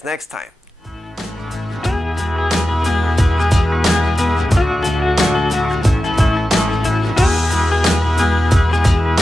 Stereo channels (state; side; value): normal; both; correlation 0.92